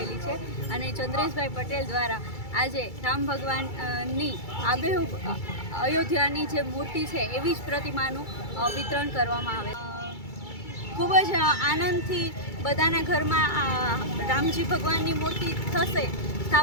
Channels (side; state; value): right; late; 2.3 ms